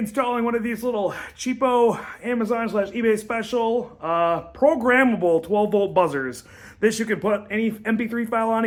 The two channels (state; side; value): identical; both; correlation 1.00